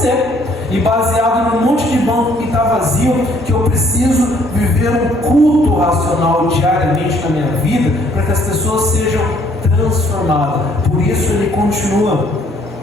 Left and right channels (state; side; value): normal; both; correlation 0.63